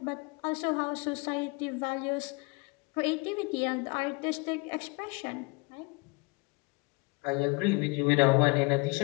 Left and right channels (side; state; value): right; quieter; 28.6 dB